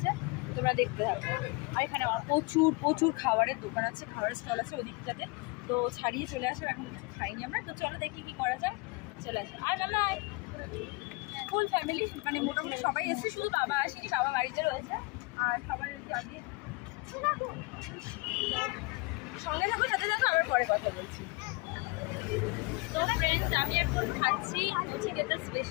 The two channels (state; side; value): quieter; right; 27.7 dB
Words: তোমরা দেখতে থাকো। আর এখানে প্রচুর খাবারের দোকান আছে, খাবারের স্টল আছে ওই দিকটাতে। তো ছাড়িয়ে চলে আসে, এখন কিছু খাইনি আমরা। তো চলো দেখি কি করা যায়, চলে আসো। আর মামা ফুল ফ্যামিলি, মানে মোটামুটি সবাই এসেছে, শুধু বাবা আসেনি, বাবা বাড়িতে রয়েছে। আর সবাই ওই যে আগে সঙ্গে থাকো, সাথে থাকো, আবার পরে কথা বলছি। তো ফ্রেন্ডস, আমি এখন খাচ্ছি চিকেনের